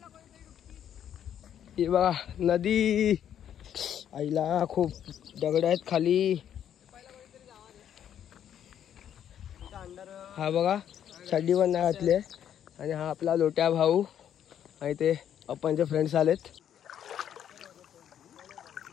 हे बघा नदी. आईला खूप दगड आहेत खाली. हा बघा चड्डी पण नाही घातली. आणि हा आपला लोट्या भाऊ आणि ते आपणचे फ्रेंड्स आलेत.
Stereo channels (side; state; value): right; quieter; 9.7 dB